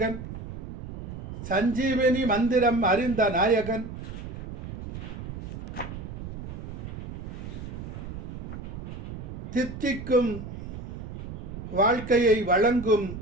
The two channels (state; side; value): noise; right; rumble, 8 dB below the sound